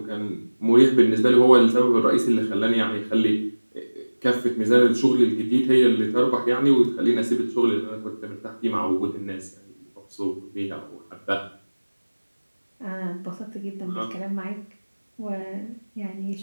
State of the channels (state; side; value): inverted; both; correlation -1.00